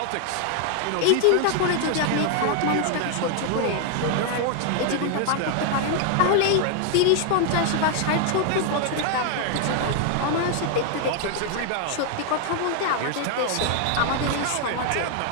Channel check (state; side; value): different; both; correlation 0.00